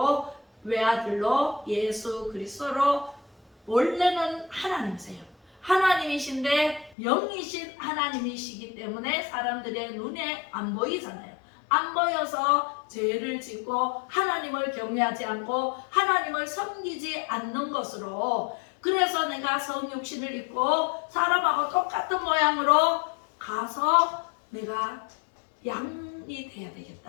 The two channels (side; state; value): right; drops out; at 7.0 s